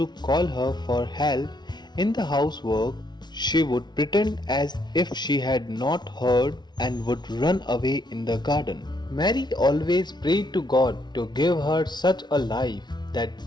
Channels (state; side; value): late; right; 0.20 ms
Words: call her for help in the housework, she would pretend as if she had not heard and would run away in the garden. Mary always prayed to God to give her such a life that